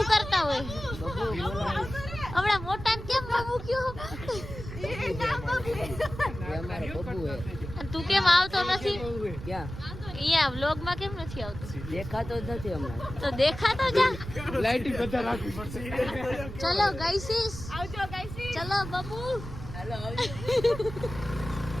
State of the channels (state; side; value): noise; right; rumble, 10 dB below the sound